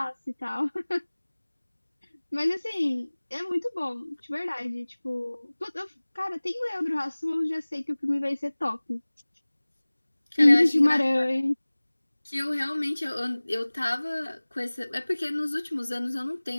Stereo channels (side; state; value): both; inverted; correlation -1.00